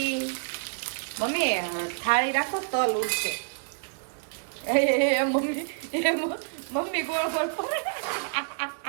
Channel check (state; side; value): silent; left; digital silence